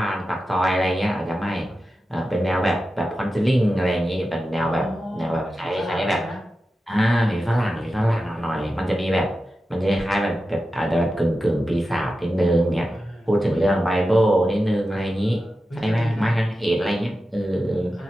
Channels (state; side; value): normal; both; correlation 0.92